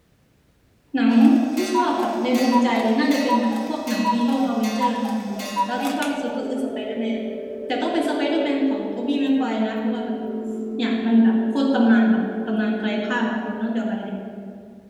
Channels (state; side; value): identical; both; correlation 1.00